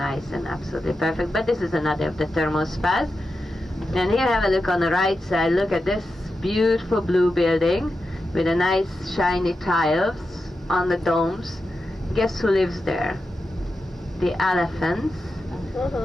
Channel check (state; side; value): normal; both; correlation 0.90